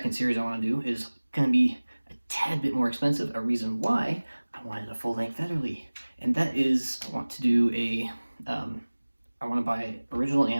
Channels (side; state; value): both; inverted; correlation -1.00